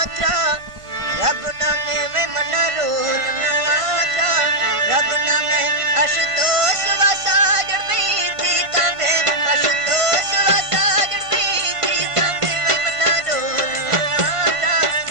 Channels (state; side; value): late; left; 1.5 ms